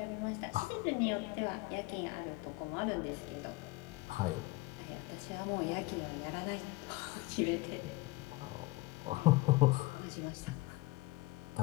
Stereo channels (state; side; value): quieter; right; 21.7 dB